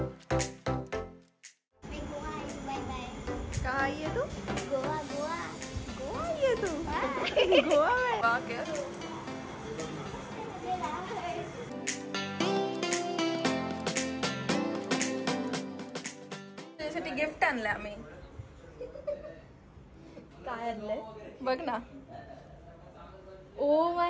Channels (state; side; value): identical; both; correlation 1.00